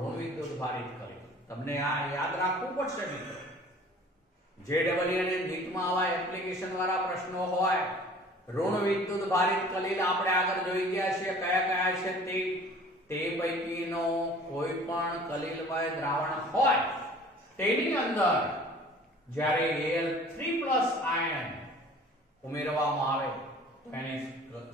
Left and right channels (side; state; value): both; normal; correlation 0.48